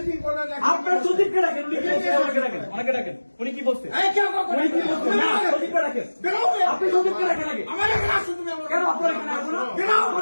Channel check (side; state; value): both; inverted; correlation -1.00